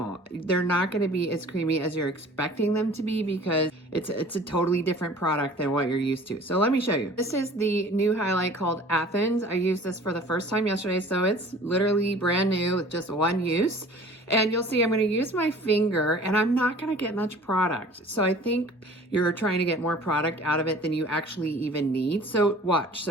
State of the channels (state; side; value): normal; both; correlation 0.47